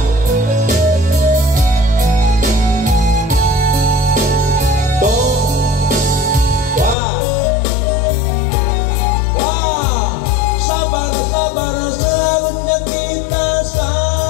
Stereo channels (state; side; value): drops out; right; at 7.0 s